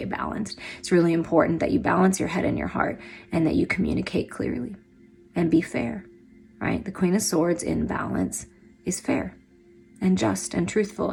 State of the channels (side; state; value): both; identical; correlation 1.00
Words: balanced. It's really important that you balance your head and your heart, and that you communicate clearly and be fair, right? The Queen of Swords in balance is fair and just and truthful